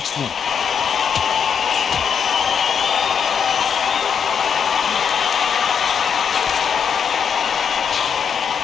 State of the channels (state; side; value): quieter; right; 7.2 dB